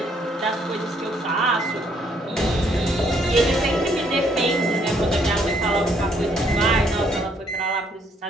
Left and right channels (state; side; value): normal; both; correlation 0.68